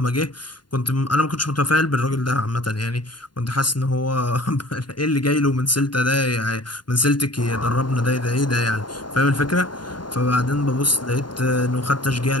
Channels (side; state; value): right; late; 0.71 ms